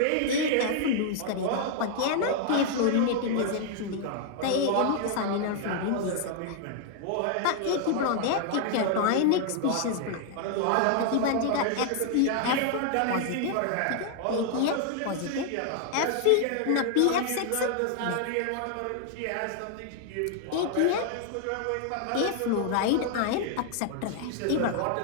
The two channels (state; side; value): different; both; correlation 0.00